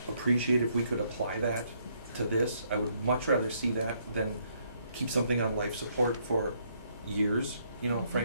appreciate if we could apply that to this. I would much rather see that than keep something on life support for years,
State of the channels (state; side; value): inverted; both; correlation -0.71